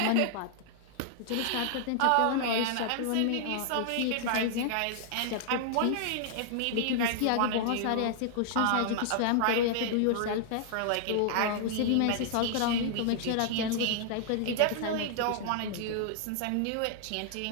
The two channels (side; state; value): both; different; correlation -0.01